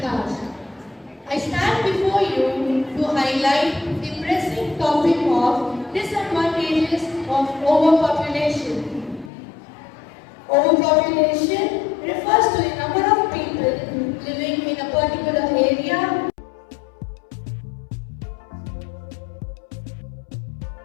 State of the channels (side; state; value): right; drops out; at 9.3 s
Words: I stand before you to highlight the pressing topic of disadvantages of overpopulation. Overpopulation refers to the number